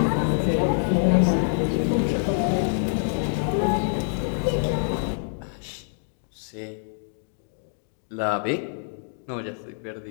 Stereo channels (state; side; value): silent; right; digital silence